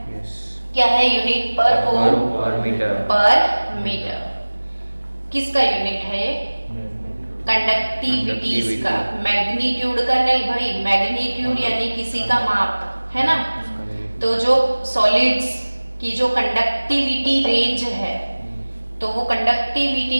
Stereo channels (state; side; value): inverted; both; correlation -1.00